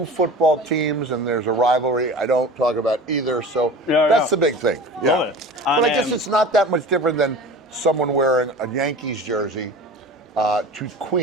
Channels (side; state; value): both; normal; correlation 0.36